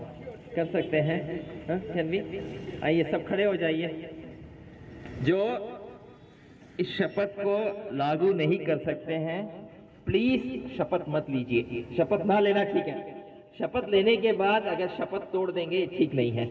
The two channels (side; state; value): both; identical; correlation 1.00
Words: कर सकते हैं? Can we? आइए सब खड़े हो जाइए। जो इस शपथ को लागू नहीं कर सकते हैं प्लीज शपथ मत लीजिए। शपथ ना लेना ठीक है। शपथ लेने के बाद अगर शपथ तोड़ देंगे ठीक नहीं